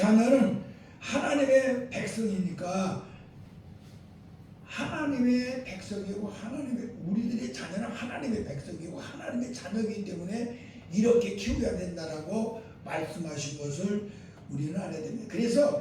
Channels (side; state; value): both; identical; correlation 1.00